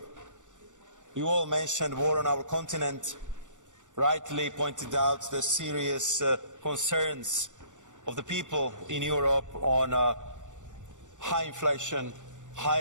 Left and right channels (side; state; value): left; late; 0.86 ms